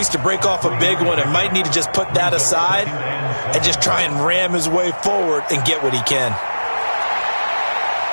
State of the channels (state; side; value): inverted; both; correlation -1.00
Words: to break off a big one and might need to just put that aside and just try and ram his way forward and get what he can.